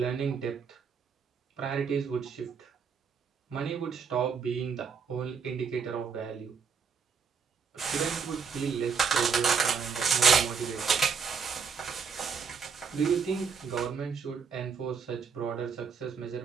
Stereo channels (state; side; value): quieter; left; 6.1 dB